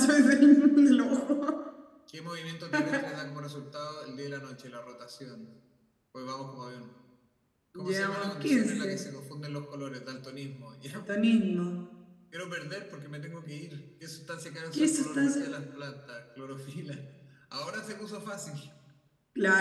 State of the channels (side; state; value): both; identical; correlation 1.00